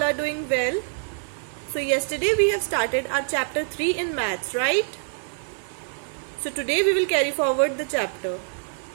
are doing well. So yesterday we have started our chapter 3 in maths, right? So today we will carry forward the chapter.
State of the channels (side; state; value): left; silent; 61 dB below the other